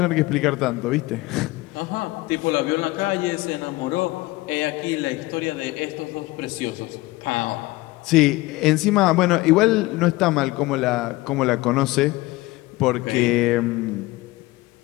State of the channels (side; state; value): right; quieter; 20.1 dB